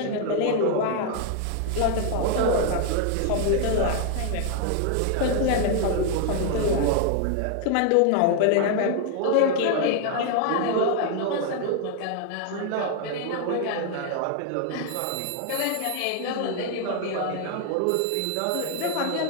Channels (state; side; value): different; both; correlation 0.00